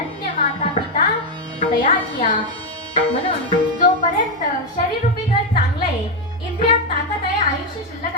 माता पिता तयाचिया. म्हणून जोपर्यंत शरीररूपी घर चांगलं आहे, इंद्रियात ताकद आहे, आयुष्य शिल्लक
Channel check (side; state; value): both; normal; correlation 0.03